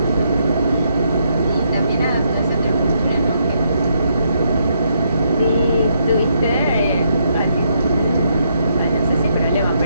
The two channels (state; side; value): inverted; both; correlation -0.76